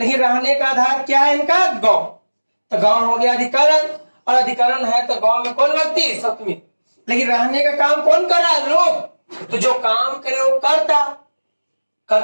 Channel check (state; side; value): inverted; both; correlation -1.00